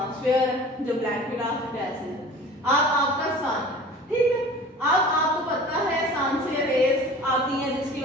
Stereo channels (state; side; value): normal; both; correlation 0.42